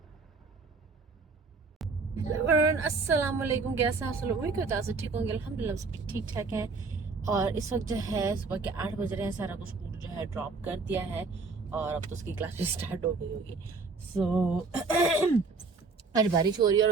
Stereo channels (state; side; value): quieter; left; 4.3 dB